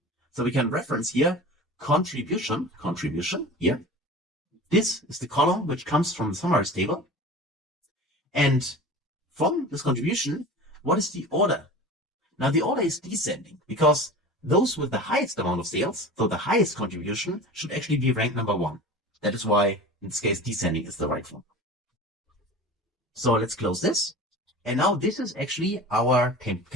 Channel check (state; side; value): normal; both; correlation 0.36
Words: So we can reference here contribution here. This is the column which comes from the summarize table. And from this contribution, what is the order? Now the order is descending because those with the highest amount of sales, so the highest contribution, should actually be ranked number 1. That is why, in this case, descending is the right form. So let's close this. And now this is actually our